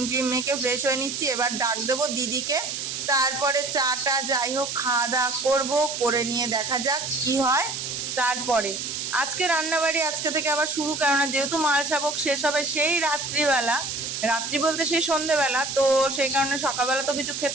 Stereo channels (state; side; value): noise; right; hiss, 4 dB below the sound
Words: ট্রিম মেখে ফ্রেশ হয়ে নিচ্ছি। এবার ডাক দেবো দিদিকে, তারপরে চাটা যাই হোক খাওয়া দাওয়া করবো, করে নিয়ে দেখা যাক কি হয়। তারপরে আজকে রান্নাবাড়ি আজকে থেকে আবার শুরু, কেননা যেহেতু মালসা ভোগ শেষ হবে সেই রাত্রিবেলা, রাত্রি বলতে সেই সন্ধেবেলা, তো সেই কারণে সকালবেলা তো কিছু